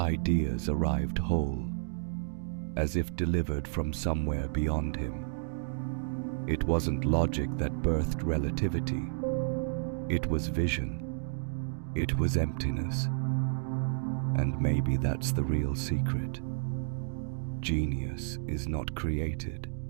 arrived whole, as if delivered from somewhere beyond him. It wasn't logic that birthed relativity. It was vision. It was emptiness. And maybe that's the real secret. Genius is not created.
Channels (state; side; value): silent; left; digital silence